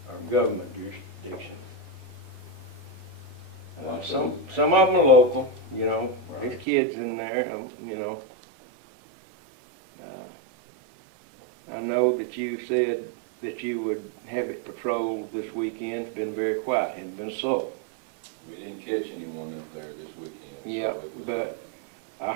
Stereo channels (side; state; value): left; drops out; at 6.7 s